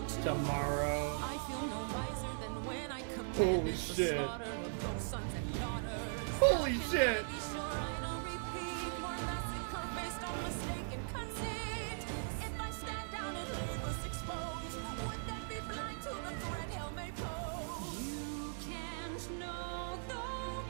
Tomorrow. I feel no wiser than when I commanded Holy the shit. slaughter of those sons and daughters. Holy shit. Be sure I don't repeat more massacre based on mistaken conceit. If I stand down and leave us exposed, would that be blind to the threat hell may pose? You can't know though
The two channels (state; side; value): silent; left; digital silence